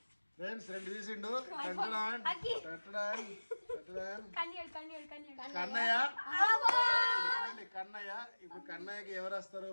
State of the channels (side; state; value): both; inverted; correlation -1.00